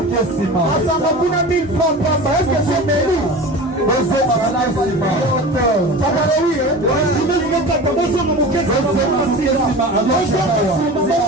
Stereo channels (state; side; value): normal; both; correlation 0.33